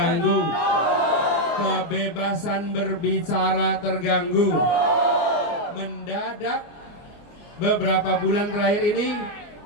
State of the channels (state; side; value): late; right; 24 ms